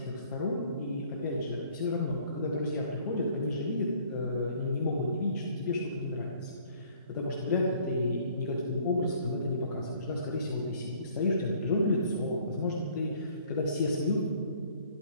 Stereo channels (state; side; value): inverted; both; correlation -0.58